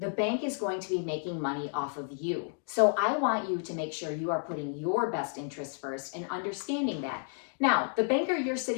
is going to be making money off of you. So I want you to make sure you are putting your best interests first and understanding that. Now, the banker you're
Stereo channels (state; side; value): silent; right; 57 dB below the other